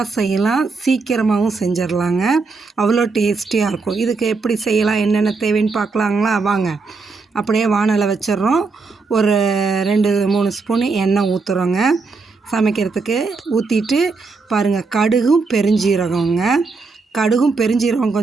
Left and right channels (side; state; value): left; quieter; 4.2 dB